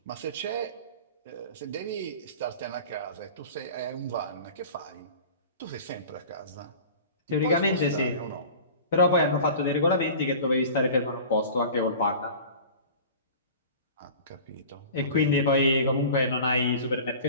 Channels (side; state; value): both; inverted; correlation -0.40